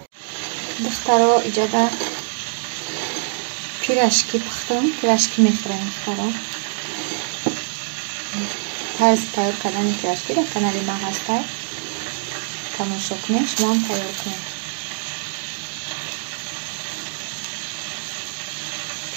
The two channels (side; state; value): left; silent; digital silence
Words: Духтаро иҷада пирашки пухтам. Пирашки мехӯрем духтаро. тарзи тайёр кардани пирашки дар канали ман ҳастай. Тамошо кунед, шумо ҳам тайёр кунед.